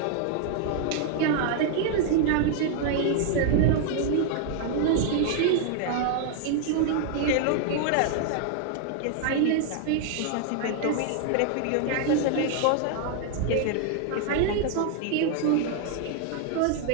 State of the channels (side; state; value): both; different; correlation 0.00